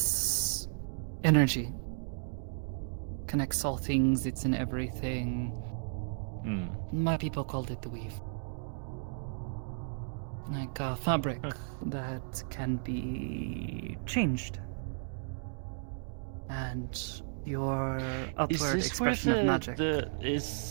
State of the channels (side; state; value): left; silent; digital silence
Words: energy connects all things, it's in everything. My people called it the weave. Like a fabric that can be changed. And your upward expression of magic.